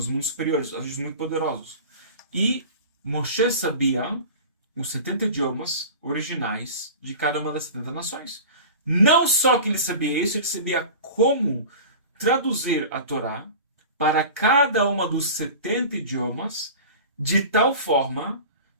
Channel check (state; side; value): inverted; both; correlation -0.35